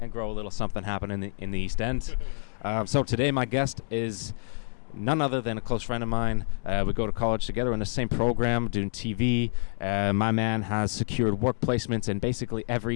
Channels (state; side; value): silent; right; digital silence